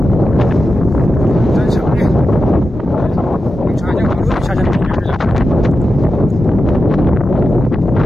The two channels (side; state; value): both; normal; correlation 0.91